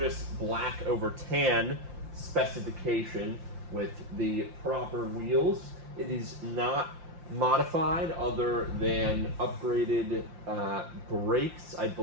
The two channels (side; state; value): left; late; 5.7 ms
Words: black over tan specification with the proper wheels. It is not modified other than upgraded brakes, I